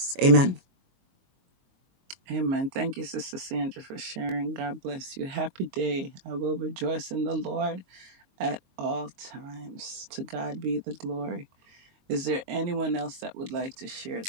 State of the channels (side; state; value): left; late; 22 ms